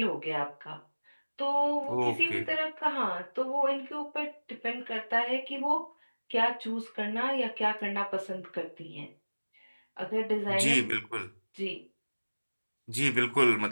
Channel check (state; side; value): inverted; both; correlation -1.00